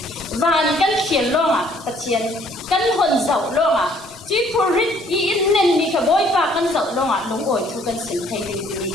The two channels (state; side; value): normal; both; correlation 0.61